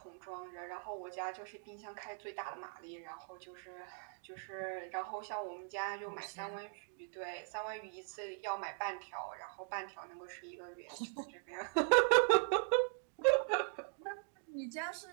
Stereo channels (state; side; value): silent; left; 51 dB below the other